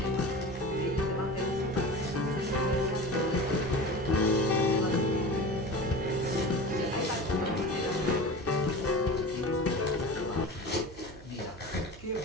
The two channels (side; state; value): right; noise; hum, 18 dB below the sound